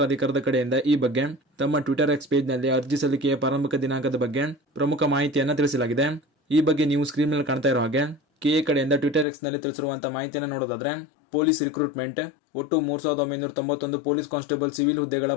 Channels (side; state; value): right; drops out; at 9.2 s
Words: ಕಡೆಯಿಂದ ಈ ಬಗ್ಗೆ ತಮ್ಮ ಟ್ವಿಟರ್ ಎಕ್ಸ್ ಪೇಜ್ ನಲ್ಲಿ ಅರ್ಜಿ ಸಲ್ಲಿಕೆಯ ಪ್ರಾರಂಭಿಕ ದಿನಾಂಕದ ಬಗ್ಗೆ ಪ್ರಮುಖ ಮಾಹಿತಿಯನ್ನು ತಿಳಿಸಲಾಗಿದೆ. ಈ ಬಗ್ಗೆ ನೀವು ಸ್ಕ್ರೀನ್ ಮೇಲೆ ಕಾಣ್ತಾ ಇರೋ ಹಾಗೆ ಕೆಎ ಕಡೆಯಿಂದ ಟ್ವಿಟರ್ ಎಕ್ಸ್ ನಲ್ಲಿ ತಿಳಿಸಿರುವಂತಹ ಮಾಹಿತಿಯನ್ನು ನೋಡೋದಾದ್ರೆ, ಪೊಲೀಸ್ ರಿಕ್ರೂಟ್ಮೆಂಟ್ ಒಟ್ಟು 3991 ಪೊಲೀಸ್ ಕಾನ್ಸ್ಟೇಬಲ್ ಸಿವಿಲ್ ಹುದ್ದೆಗಳ